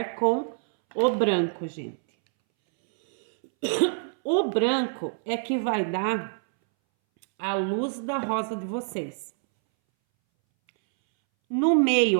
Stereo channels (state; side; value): silent; left; 61 dB below the other